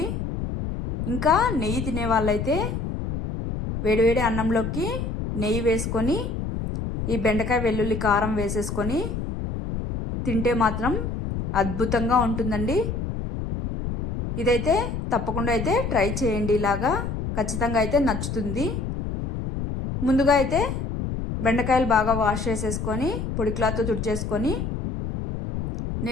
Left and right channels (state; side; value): noise; left; rumble, 4 dB below the sound